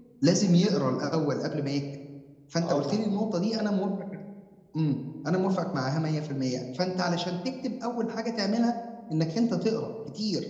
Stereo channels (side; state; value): both; identical; correlation 1.00